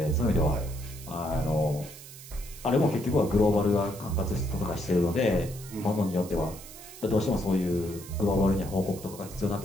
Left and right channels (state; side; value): noise; right; hiss, 16 dB below the sound